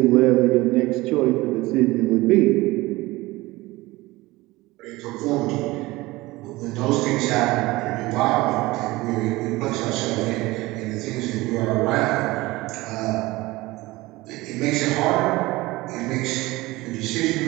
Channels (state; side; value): quieter; left; 20.2 dB